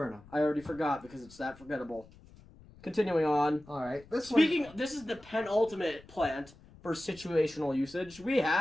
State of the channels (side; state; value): left; noise; rumble, 23 dB below the sound